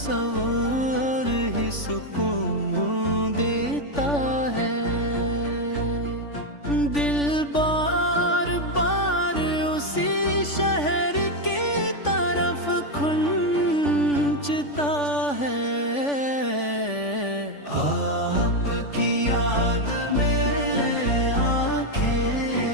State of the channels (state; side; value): late; right; 3.5 ms